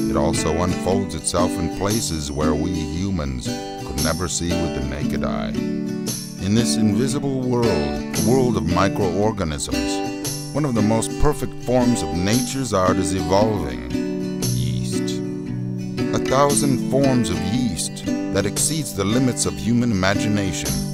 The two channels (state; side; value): identical; both; correlation 1.00